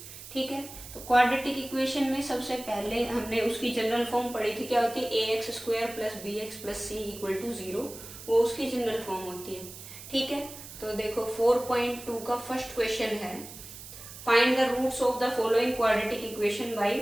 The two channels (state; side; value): noise; right; hiss, 14 dB below the sound